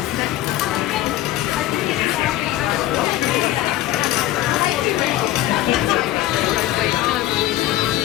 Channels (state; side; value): quieter; right; 14.4 dB